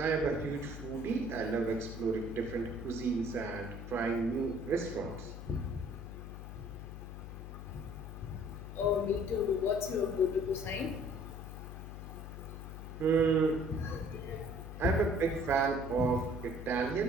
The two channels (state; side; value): noise; left; hum, 9 dB below the sound